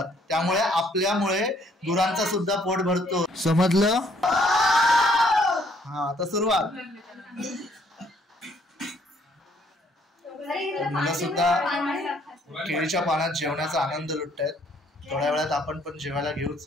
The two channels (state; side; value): normal; both; correlation 0.65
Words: त्यामुळे आपल्यामुळे गुरांचा सुद्धा पोट भरतो. समजलं? हा, आता सुरुवात. मुलं सुद्धा केळीच्या पानात जेवणाचा आनंद लुटतायत. थोड्या वेळात आपण पण जेवायला